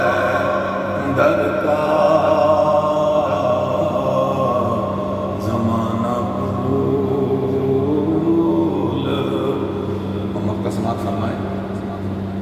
در کا، زمانہ بھول محمد کا سماعت فرمائے،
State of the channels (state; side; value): identical; both; correlation 1.00